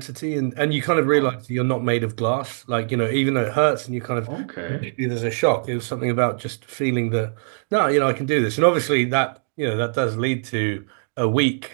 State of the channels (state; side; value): silent; left; digital silence